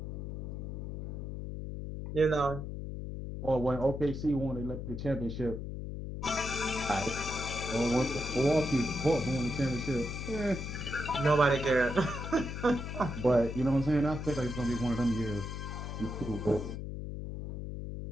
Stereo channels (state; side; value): noise; left; hum, 6 dB below the sound